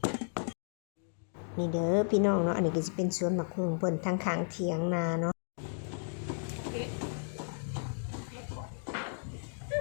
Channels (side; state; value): right; silent; digital silence